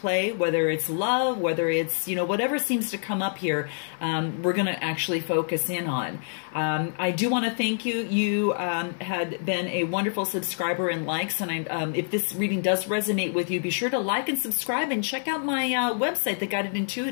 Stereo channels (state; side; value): silent; right; 61 dB below the other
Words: whether it's love, whether it's, whatever seems to come up here, we're going to actually focus in on. I do want to thank you. You had been a wonderful subscriber and likes, and if this reading does resonate with you, be sure to like and subscribe and check out my website, The Guided